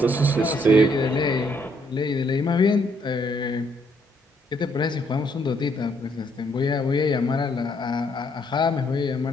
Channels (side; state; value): both; normal; correlation 0.70